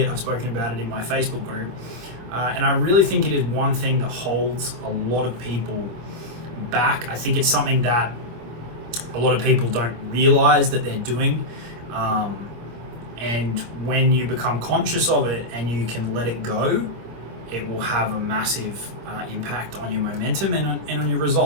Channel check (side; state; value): left; late; 25 ms